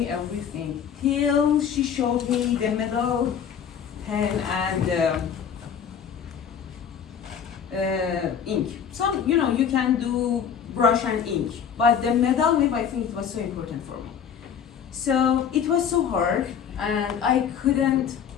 everything. Till she showed me the metal pen and ink. So, you can do brush and ink, but the metal nib, I think it was so important for me. So it was so hard, and I couldn't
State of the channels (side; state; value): right; quieter; 7.8 dB